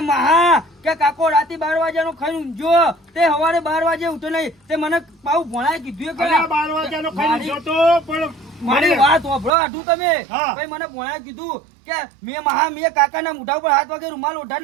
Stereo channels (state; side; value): drops out; left; at 9.5 s